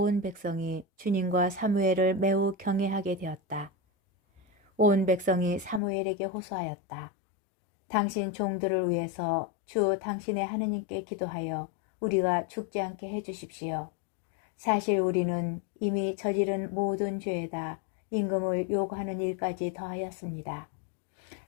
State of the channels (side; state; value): right; drops out; at 5.8 s